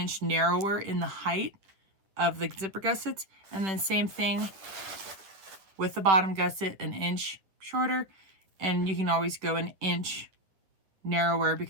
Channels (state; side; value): late; left; 10 ms